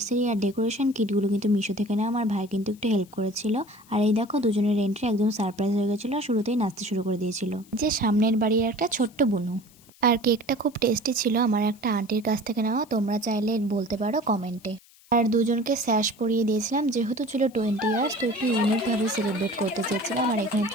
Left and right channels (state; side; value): noise; left; hiss, 27 dB below the sound